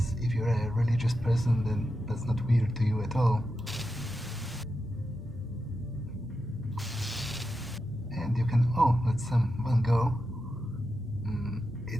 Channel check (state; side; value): normal; both; correlation 0.89